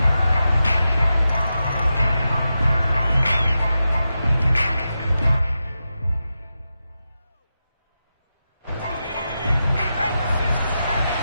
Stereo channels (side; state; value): both; inverted; correlation -0.90